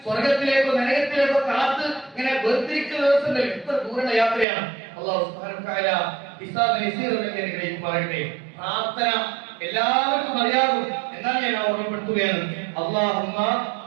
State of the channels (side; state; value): left; drops out; at 4.5 s